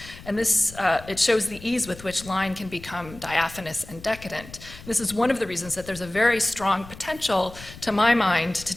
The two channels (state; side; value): noise; left; rumble, 17 dB below the sound